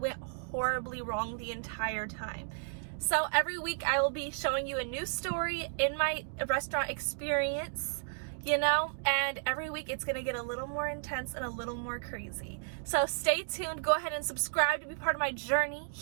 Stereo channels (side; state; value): left; silent; digital silence